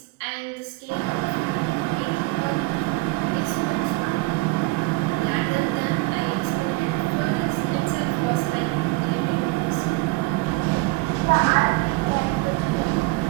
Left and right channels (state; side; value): quieter; left; 23.1 dB